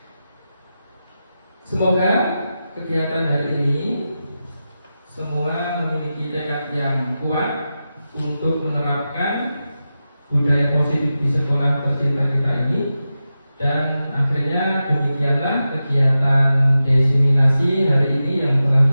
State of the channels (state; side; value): inverted; both; correlation -0.92